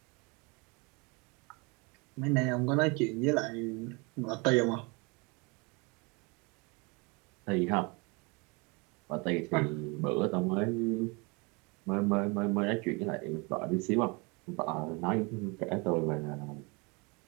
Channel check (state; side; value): quieter; left; 29.4 dB